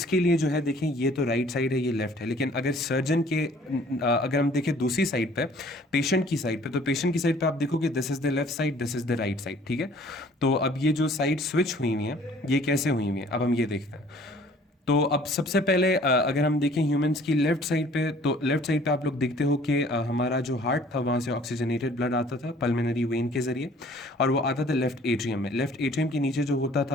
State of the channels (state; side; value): normal; both; correlation 0.54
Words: लिए जो है देखें, ये तो राइट साइड है, ये लेफ्ट है, लेकिन अगर सर्जन के अगर हम देखें दूसरी साइड पे, पेशेंट की साइड पे, तो पेशेंट की साइड पे आप देखोगे this is the left side, this is the right side, ठीक है। तो अब ये जो साइड स्विच हुई हुई है, ये कैसे हुई हुई है, अब हम ये देखते हैं। तो अब सबसे पहले अगर हम देखें ह्यूमंस की लेफ्ट साइड पे, तो लेफ्ट साइड पे आप लोग देखते हो कि हमारा जो हार्ट था वहाँ से ऑक्सीजनेटेड ब्लड आता था पल्मोनरी वेन के जरिए, और वो आता था लेफ्ट एट्रियम में। लेफ्ट एट्रियम के नीचे जो होता